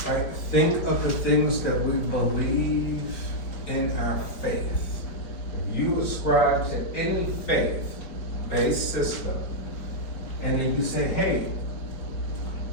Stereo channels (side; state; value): right; late; 4.9 ms